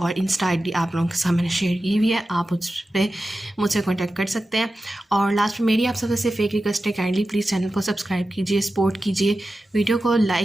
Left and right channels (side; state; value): both; normal; correlation 0.93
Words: انسٹا ID آپ لوگوں کے ساتھ میں نے شیئر کی ہوئی ہے، آپ اس پہ مجھ سے کانٹیکٹ کر سکتے ہیں۔ اور لاسٹ میں میری آپ سب سے ایک ریکویسٹ ہے، کائنڈلی پلیز چینل کو سبسکرائب کیجیے، سپورٹ کیجیے، ویڈیو کو